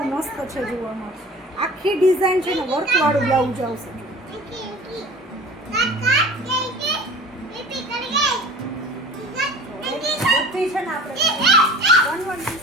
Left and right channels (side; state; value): both; normal; correlation 0.41